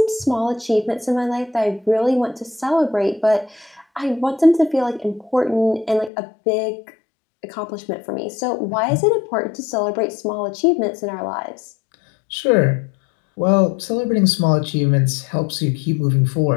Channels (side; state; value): right; drops out; at 6.1 s